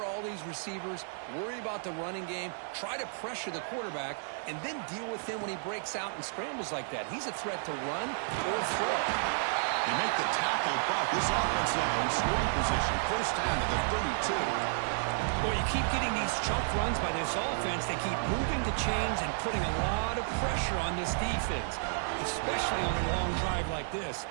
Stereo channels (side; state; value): left; silent; 56 dB below the other